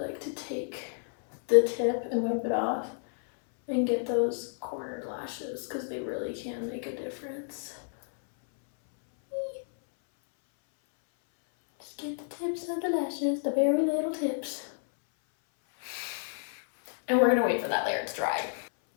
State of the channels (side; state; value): right; silent; 58 dB below the other